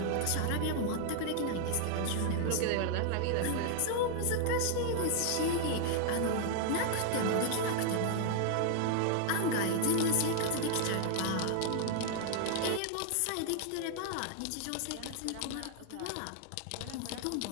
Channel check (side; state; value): both; different; correlation 0.00